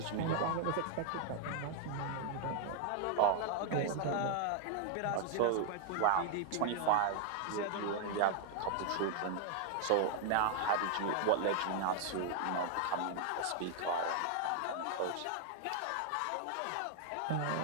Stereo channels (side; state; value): both; different; correlation 0.00